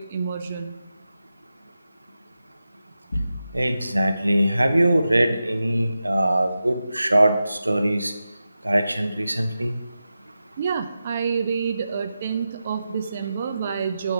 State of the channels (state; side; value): inverted; both; correlation -0.92